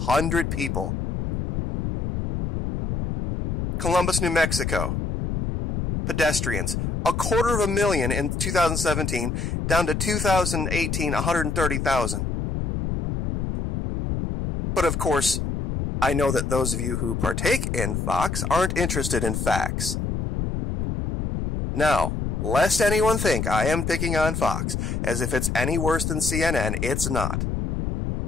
people. Columbus, New Mexico. Pedestrians. 250,000 in 2017, down to 2018, 130,000. But of course, I know that those of you who partake in Fox aren't interested in facts. Now, lest anyone think I am picking on Fox, as if it's any worse than CNN, it's not.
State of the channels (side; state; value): left; noise; rumble, 2 dB below the sound